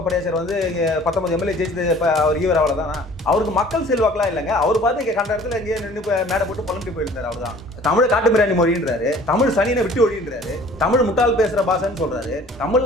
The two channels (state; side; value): normal; both; correlation 0.50